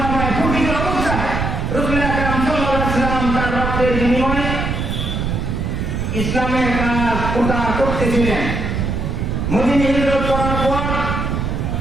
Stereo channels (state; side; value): noise; right; rumble, 2 dB below the sound